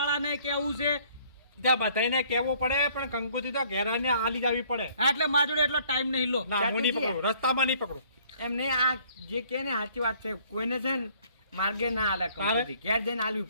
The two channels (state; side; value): inverted; both; correlation -0.60